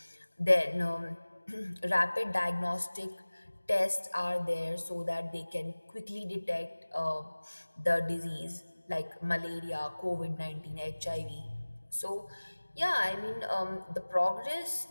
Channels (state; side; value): inverted; both; correlation -1.00